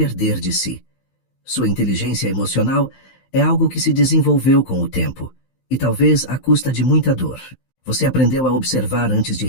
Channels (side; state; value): right; late; 15 ms